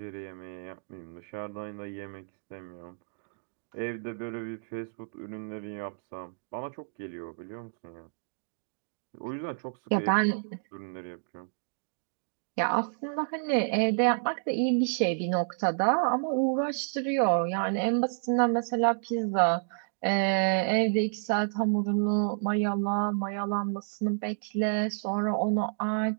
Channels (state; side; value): silent; left; digital silence